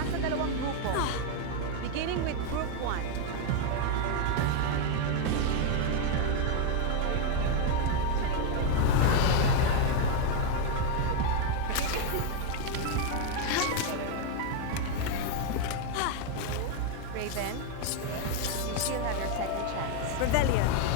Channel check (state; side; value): different; both; correlation 0.01